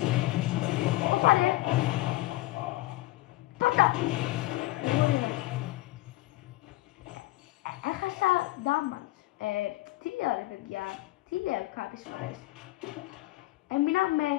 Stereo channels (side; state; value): right; quieter; 18.4 dB